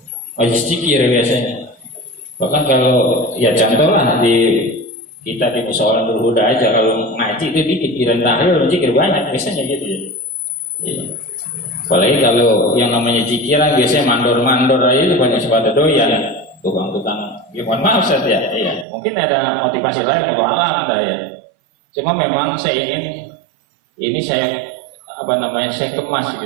majlis zikir biasanya. Bahkan kalau ya contoh lah kita di musyawarah Nurul Huda aja, kalau ngaji itu dikit, kira tahlil zikir banyak biasanya gitu ya. Iya. Apalagi kalau yang namanya zikiran biasanya mandor-mandor aja itu banyak pada doyan, tukang-tukang. Ya mohon maaf Ustaz ya, iya. Mungkin ada motivasi lain, kalau alam dah ya. Cuma memang saya ingin ini saya kemas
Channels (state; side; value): drops out; left; at 18.9 s